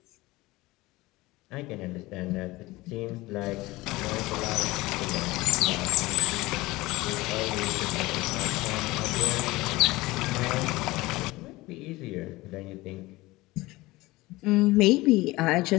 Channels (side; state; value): right; quieter; 20.3 dB